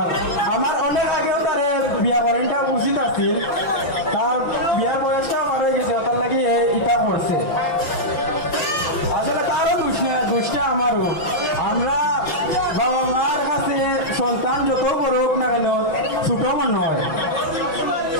আমার অনেক আগেও তার বিয়া করেনটা উচিত আছিল তার বিয়ার বয়সটা আমার হয়ে গেছে তার লাগে ইটা করছে আসলে তারও দুষ্টা আমারও আমরা বাবা মার কাছে সন্তান যত বড় হোক না কেন ছোট মনে হয়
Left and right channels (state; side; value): late; right; 5.9 ms